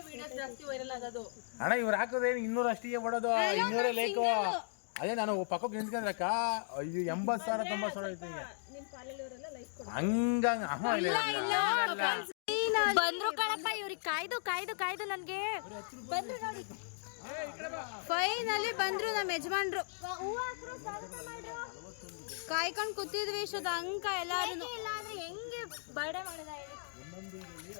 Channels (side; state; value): right; silent; digital silence